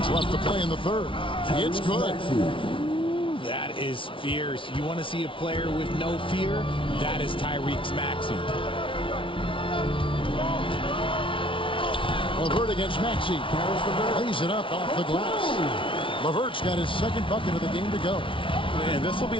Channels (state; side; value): late; right; 0.25 ms